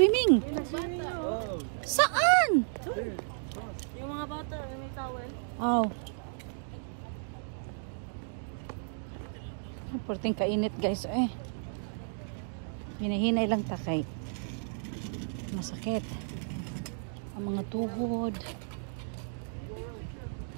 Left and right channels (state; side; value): silent; left; digital silence